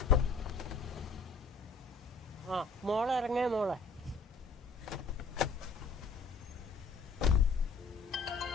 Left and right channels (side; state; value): right; quieter; 4.2 dB